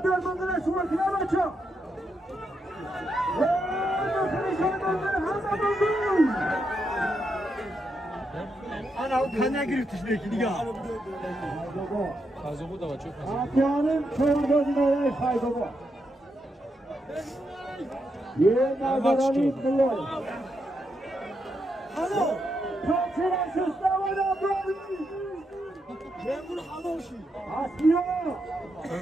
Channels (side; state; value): both; normal; correlation 0.82